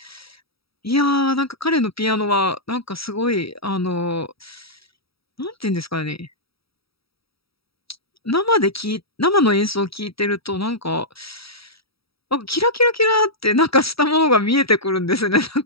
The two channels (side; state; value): right; late; 0.76 ms